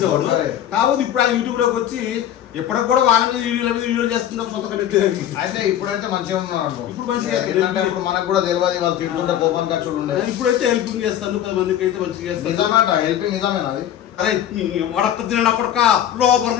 కాబట్టి ఇప్పుడు ఆయన యూట్యూబ్ లోకి వచ్చి ఎప్పటికి కూడా వాళ్ళ మీద వీడియో చేస్తున్నాం సొంత కంటెంట్. అయితే ఇప్పుడైతే మంచిగా ఉన్నాడు. ఇప్పుడు మంచిగా ఏంటంటే ఇప్పుడు మనకు కూడా తెలియదు వాళ్ళు తింటుంటే కోపం ఖర్చులు ఉండే. ఇప్పుడైతే హెల్పింగ్ చేస్తాను 10 మందికి అయితే మంచిగా చేస్తాను. నిజమేట హెల్పింగ్ నిజమేనా అది? అరే వడక్క తిన కొడక లోపల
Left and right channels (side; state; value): right; quieter; 11.0 dB